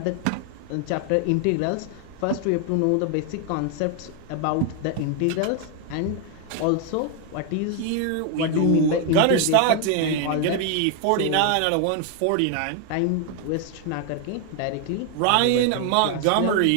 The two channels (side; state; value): both; different; correlation 0.00